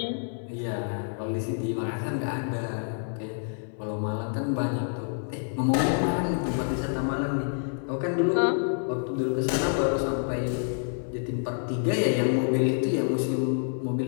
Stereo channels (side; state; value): right; silent; 60 dB below the other